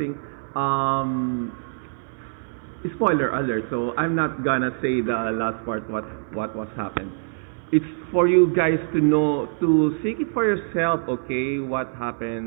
spoiler alert. So I'm not gonna say the last part what was happened. It's for you guys to know, to seek it for yourself. Okay, what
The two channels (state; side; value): silent; left; 59 dB below the other